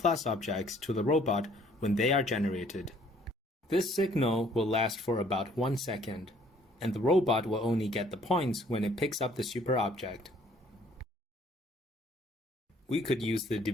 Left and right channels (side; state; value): both; normal; correlation 0.60